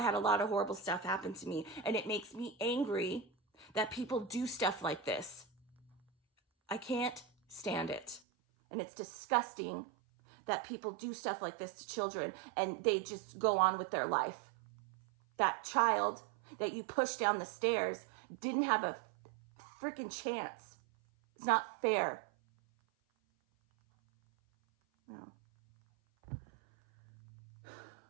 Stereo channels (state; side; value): drops out; left; at 8.2 s